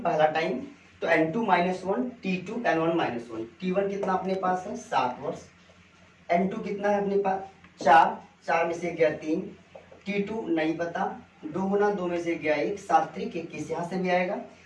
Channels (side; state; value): both; identical; correlation 1.00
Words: पहला टाइम तो N2 minus 1, T2 N1 minus 1। T1 कितना अपने पास है 7 वर्ष, N2 कितना है अपने पास 4, 4 में से गया 3, T2 नहीं पता, 2 गुना 2 में से गया 1, 7 त्रिक 21 यहाँ से भी आएगा।